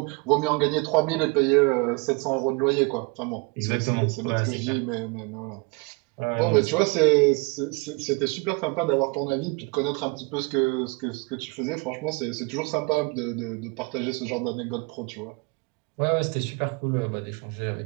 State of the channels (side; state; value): left; quieter; 29.4 dB